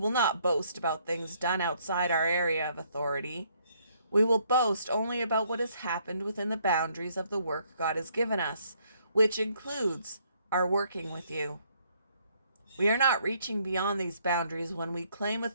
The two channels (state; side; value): inverted; both; correlation -0.68